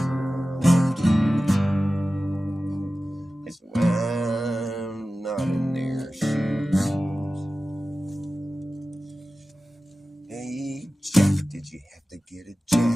'cause I'm not in their shoes. Hey, Jack, did you have to get a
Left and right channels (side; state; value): both; normal; correlation 0.95